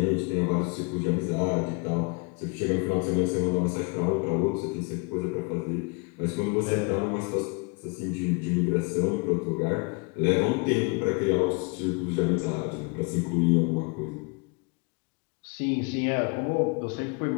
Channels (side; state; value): right; quieter; 32.1 dB